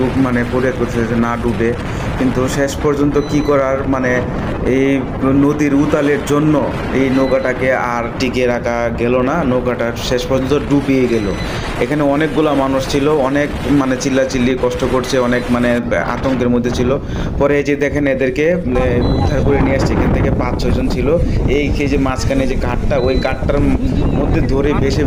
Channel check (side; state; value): both; identical; correlation 1.00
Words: মানে ফরিয়াদ করতেছে যে না ডুবে। কিন্তু শেষ পর্যন্ত কি করার, মানে এই নদীর উতালের জন্য এই নৌকাটাকে আর টিকিয়ে রাখা গেল না, নৌকাটা শেষ পর্যন্ত ডুবিয়ে গেল। এখানে অনেকগুলো মানুষ ছিল, অনেক মানে চিল্লাচিল্লি কষ্ট করছে, অনেক মানে আতঙ্কের মধ্যে ছিল। পরে এই যে দেখেন এদেরকে উদ্ধার করে নিয়ে আসছে। এখান থেকে 5-6 জন ছিল। এই যে মাঝখানে যে ঘাটটা, ওই ঘাটটার মধ্যে ধরে